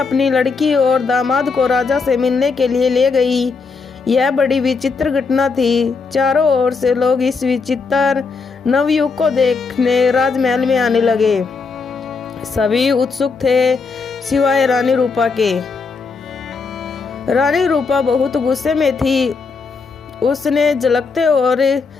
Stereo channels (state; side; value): quieter; right; 4.7 dB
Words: अपनी लड़की और दामाद को राजा से मिलने के लिए ले गई। यह बड़ी विचित्र घटना थी। चारों ओर से लोग इस विचित्र नवयुवक को देखने राजमहल में आने लगे। सभी उत्सुक थे सिवाय रानी रूपा के। रानी रूपा बहुत गुस्से में थी। उसने झलकते और